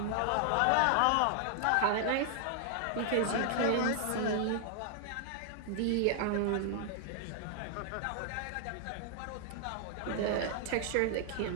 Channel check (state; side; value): different; both; correlation 0.00